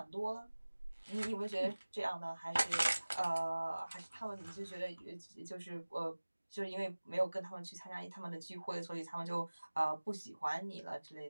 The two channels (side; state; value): both; inverted; correlation -1.00